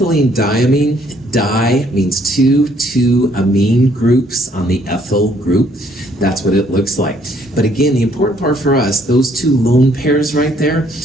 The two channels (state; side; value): normal; both; correlation 0.66